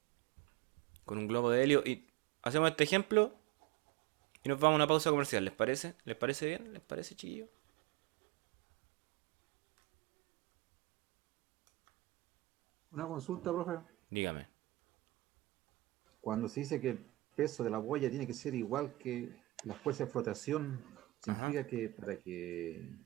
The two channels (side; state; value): left; quieter; 19.2 dB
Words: Con un globo de helio. Y hacemos este ejemplo y nos vamos a una pausa comercial. ¿Les parece? ¿Les parece bien? ¿Les parece, chiquillo? Una consulta, profe. Dígame. Cuando se dice que el peso de la boya tiene que ser igual que la fuerza de flotación, significa que para que...